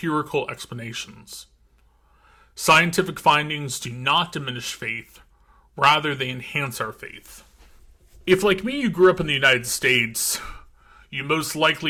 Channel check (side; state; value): both; identical; correlation 1.00